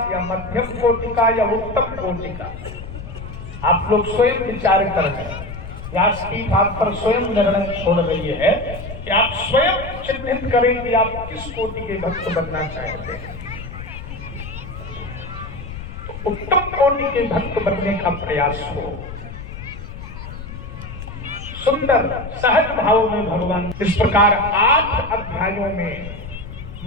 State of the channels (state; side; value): noise; left; rumble, 11 dB below the sound